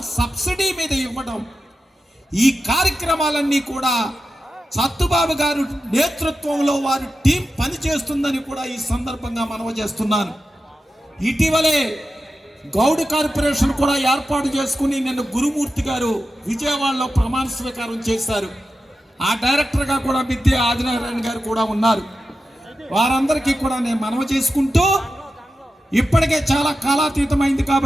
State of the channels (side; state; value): both; normal; correlation 0.91